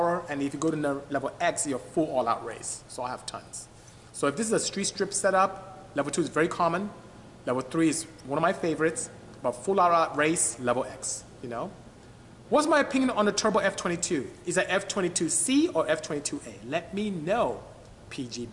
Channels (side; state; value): both; identical; correlation 1.00